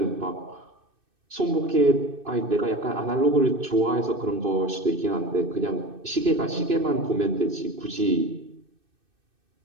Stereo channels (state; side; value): late; left; 2.6 ms